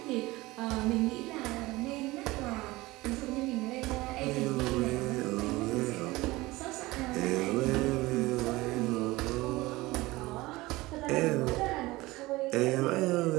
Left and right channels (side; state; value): left; quieter; 20.2 dB